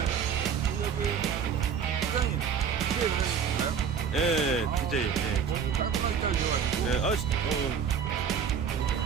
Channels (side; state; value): left; quieter; 7.1 dB